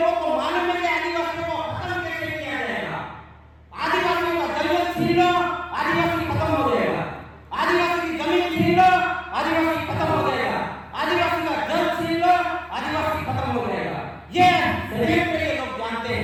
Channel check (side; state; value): both; identical; correlation 1.00